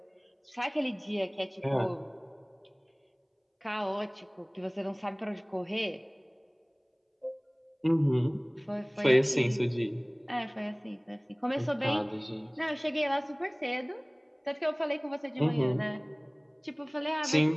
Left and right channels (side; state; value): both; identical; correlation 1.00